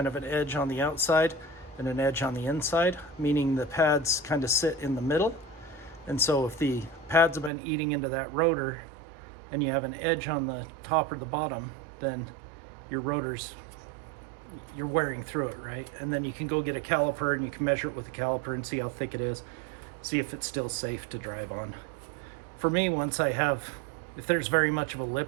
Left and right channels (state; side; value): drops out; left; at 7.5 s